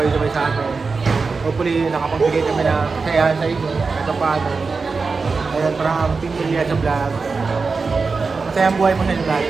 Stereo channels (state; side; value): quieter; left; 4.5 dB